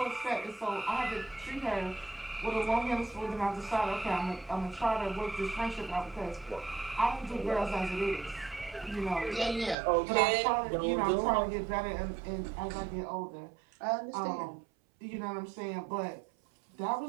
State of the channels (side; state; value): left; drops out; at 9.8 s